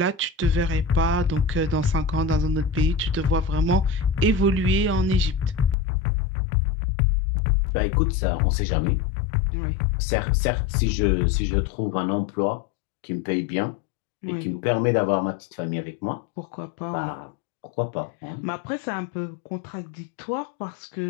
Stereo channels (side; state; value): right; drops out; at 5.8 s